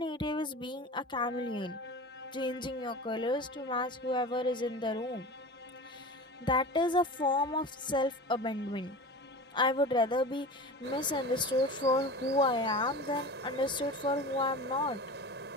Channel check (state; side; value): normal; both; correlation 0.33